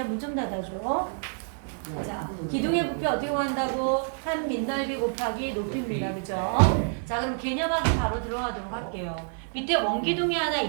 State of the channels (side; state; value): left; silent; 60 dB below the other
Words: 문 좀 닫아줘. 자, 기둥의 부피 어떻게 구한다고? 한 밑넓이 곱하기 높이입니다. 그죠? 자, 그럼 개념하기 바로 들어가도록 할게요. 밑에 원기둥이 하나